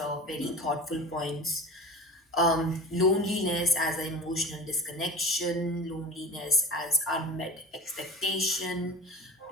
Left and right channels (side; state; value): both; normal; correlation 0.34